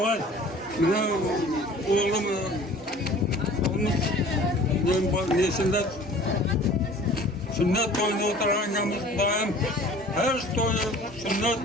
Mana o'g'lim nesinde sünnet toyuna o'tirganmiz Xudoyim. Her to'yi, sünnet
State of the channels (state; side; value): normal; both; correlation 0.47